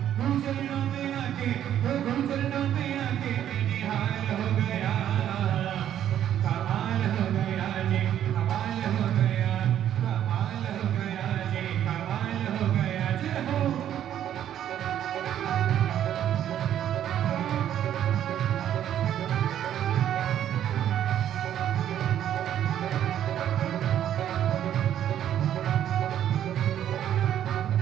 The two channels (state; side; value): quieter; left; 10.7 dB